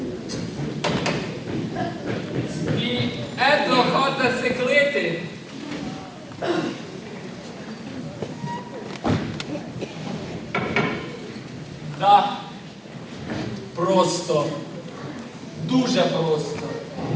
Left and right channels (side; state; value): both; identical; correlation 1.00